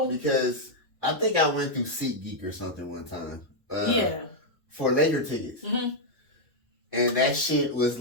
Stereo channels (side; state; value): both; normal; correlation -0.02